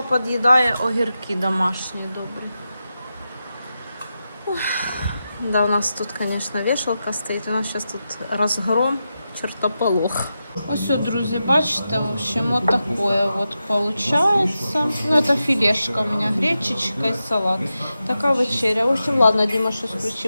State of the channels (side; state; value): both; inverted; correlation -0.90